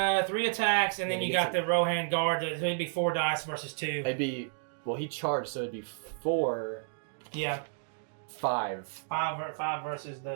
3 attacks, and then you got the Rohan guard. So it'd be 4 dice versus 2. It'd be he charged, so it'd be 4. Yeah. 5. 5 versus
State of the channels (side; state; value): left; silent; digital silence